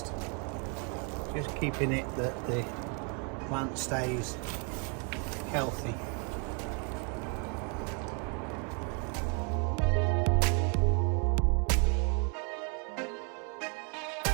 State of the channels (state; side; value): quieter; left; 37.3 dB